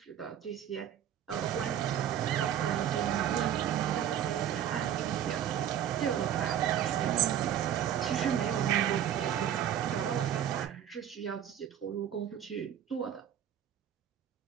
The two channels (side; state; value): left; quieter; 10.1 dB